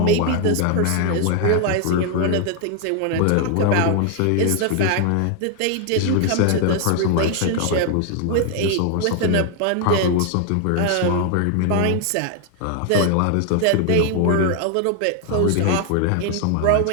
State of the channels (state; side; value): different; both; correlation 0.00